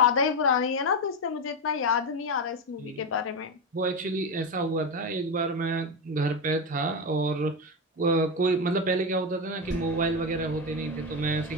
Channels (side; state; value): both; normal; correlation 0.13